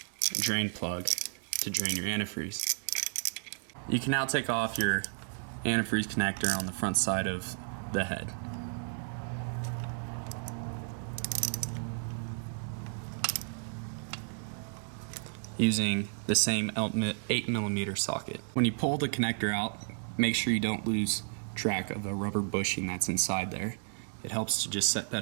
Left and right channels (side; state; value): left; silent; 56 dB below the other